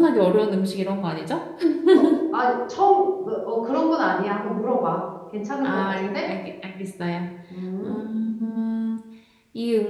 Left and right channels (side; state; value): both; identical; correlation 1.00